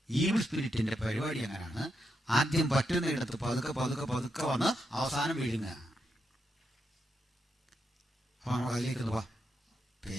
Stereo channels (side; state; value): both; normal; correlation 0.83